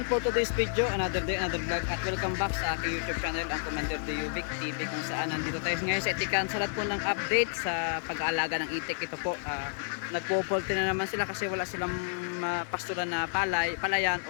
for today's video, another day, another vlog, at welcome back sa aking YouTube channel, ang Commander Diovic TV, kung saan nandito tayo ngayon sa Itikan sa lahat po ng update sa pag-aalaga ng itik. Ito po, nagpo-poultry na naman sila kasi wala silang pastulan na palayan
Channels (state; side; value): silent; right; digital silence